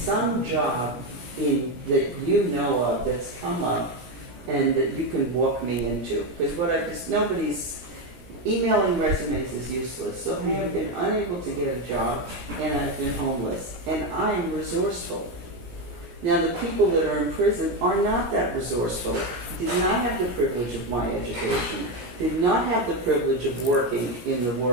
job that you know of that's come up and that you can walk me into. Because nobody's emailing resumes is useless. So I have been unable to get a job, and I've been homeless, and I'm resourceful. Now, the people that are in prison are not that resourceful, did not have the privilege of my education, did not have the privilege of working in the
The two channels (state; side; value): late; left; 16 ms